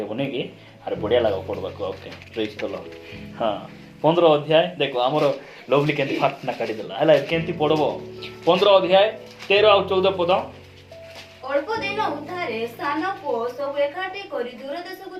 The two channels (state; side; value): identical; both; correlation 1.00